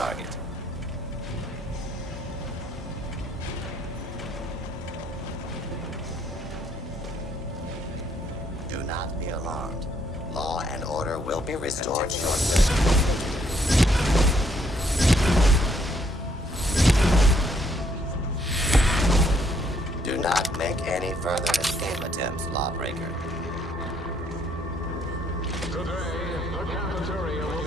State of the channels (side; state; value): both; normal; correlation 0.69